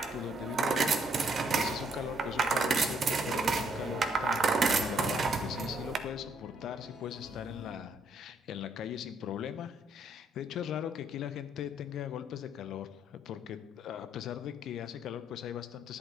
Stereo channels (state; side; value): normal; both; correlation 0.70